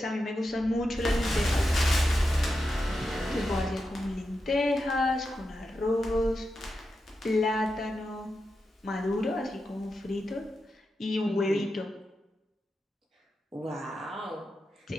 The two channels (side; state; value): both; normal; correlation 0.88